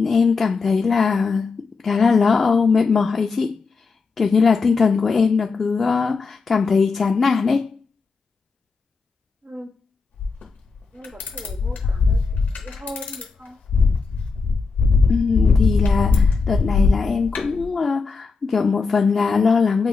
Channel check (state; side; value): quieter; right; 4.6 dB